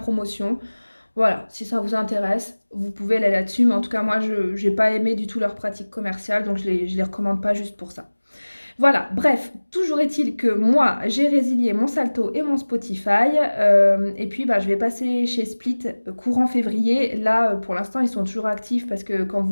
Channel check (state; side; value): inverted; both; correlation -1.00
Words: Voilà, si ça vous intéresse, vous pouvez aller là-dessus. Mais en tout cas, moi, je n'ai pas aimé du tout leur pratique commerciale, donc je les recommande pas juste pour ça. Voilà, bref, toujours est-il que moi, j'ai résilié mon Salto et mon Spotify. Et puis, bah, je vais passer chez Split courant février. Là, pour l'instant, ils sont toujours actifs parce que quand